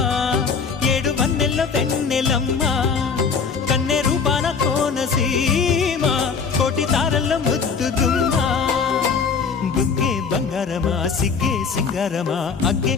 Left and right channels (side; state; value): right; quieter; 5.6 dB